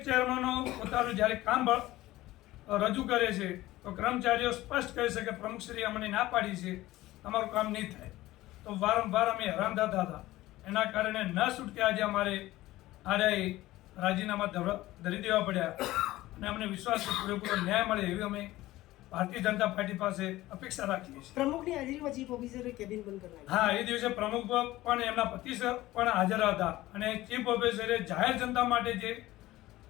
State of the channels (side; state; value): right; quieter; 16.9 dB